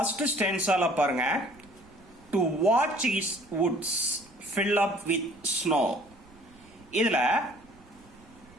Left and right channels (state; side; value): noise; right; rumble, 26 dB below the sound